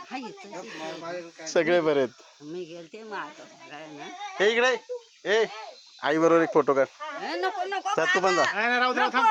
सगळे बरे आहेत मी गेलते हे इकडे ए आई बरोबर एक फोटो काढ नको नको तर तू पण जा नाही, नाही, राहू दे, थांब.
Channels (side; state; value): both; identical; correlation 1.00